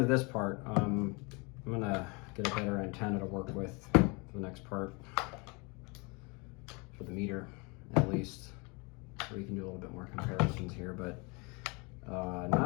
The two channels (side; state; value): right; quieter; 29.8 dB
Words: of this part. I'm gonna get a better antenna to work with for the next part, for the meter at least. So we can do a little bit more comparisons here, but